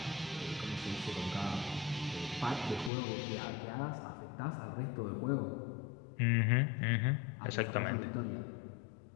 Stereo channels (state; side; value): drops out; right; at 2.9 s